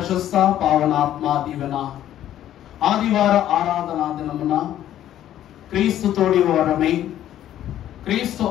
పావనాత్మ దీవెన ఆదివార ఆరాధనా దినమున క్రీస్తు తోడి వారమై క్రీస్తు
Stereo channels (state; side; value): quieter; right; 12.0 dB